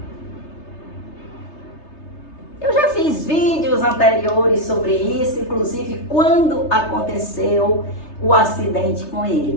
Eu já fiz vídeos anteriores sobre isso, inclusive quando aconteceu o acidente com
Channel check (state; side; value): late; right; 3.3 ms